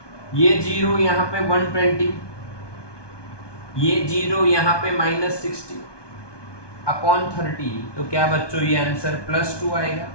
ये 0 यहाँ पे 120, ये 0 यहाँ पे -60 अपॉन 30, तो क्या बच्चों ये आंसर +2 आएगा?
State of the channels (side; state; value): right; late; 1.2 ms